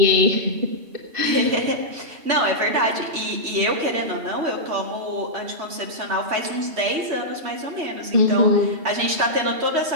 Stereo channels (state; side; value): late; left; 3.1 ms